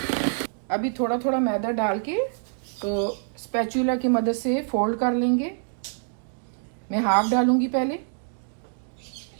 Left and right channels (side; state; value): left; silent; digital silence